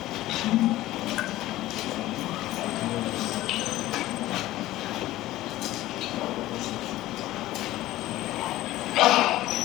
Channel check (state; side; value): quieter; right; 16.0 dB